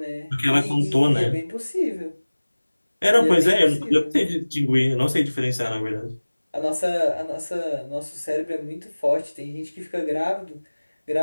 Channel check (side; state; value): both; inverted; correlation -1.00